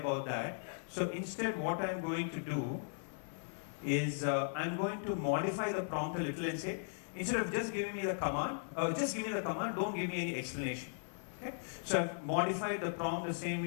that. So instead, what I'm going to do is I'm going to modify the prompt a little and say, instead of just giving me the command, don't give me any explanation. Okay? So I've modified the prompt the same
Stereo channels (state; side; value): silent; right; digital silence